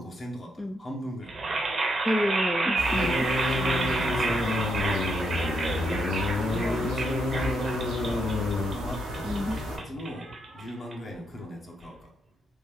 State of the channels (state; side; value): normal; both; correlation 0.79